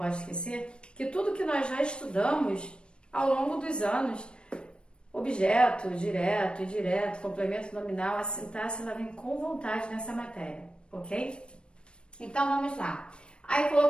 esquecer que tudo que nós já estudamos ao longo dos anos, objeto, direto, indireto, complemento nominal, a sintaxe, ela vem com vontade nessa matéria, ok? Então, vamos lá. Aí,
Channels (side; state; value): right; late; 0.055 ms